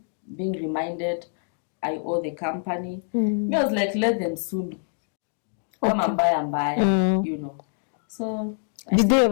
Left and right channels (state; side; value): silent; right; 61 dB below the other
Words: being reminded I owe the company. I was like, let them sue me. Come and buy, you know. So did they